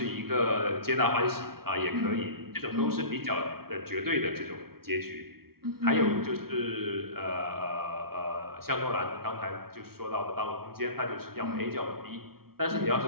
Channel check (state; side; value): late; left; 0.94 ms